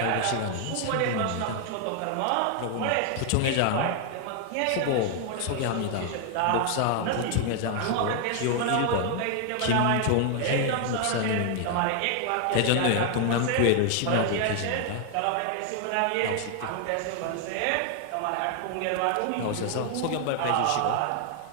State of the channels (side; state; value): both; different; correlation 0.00